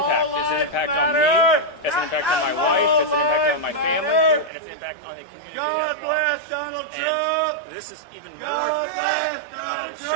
It's an impact on me, it's an impact on my wife, it's an impact on my family, and it's an impact on the community at large. And this is even more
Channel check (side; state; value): left; drops out; at 4.5 s